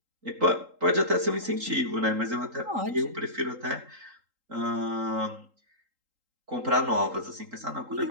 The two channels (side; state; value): left; late; 3.8 ms